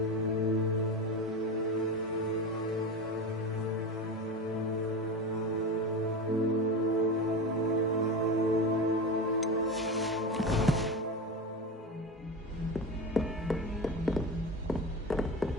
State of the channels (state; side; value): normal; both; correlation 0.23